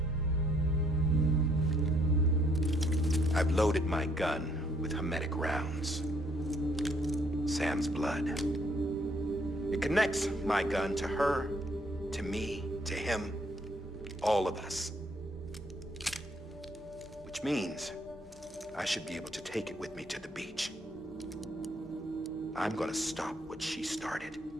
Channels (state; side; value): normal; both; correlation 0.67